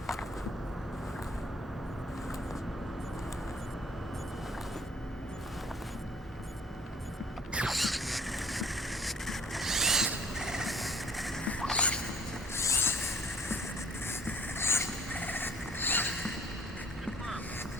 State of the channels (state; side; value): normal; both; correlation 0.56